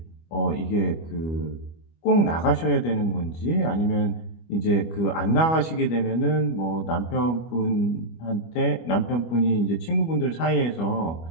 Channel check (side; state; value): right; late; 25 ms